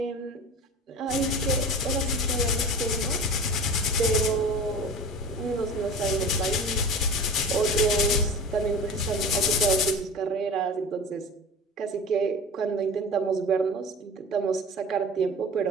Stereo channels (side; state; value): both; normal; correlation 0.36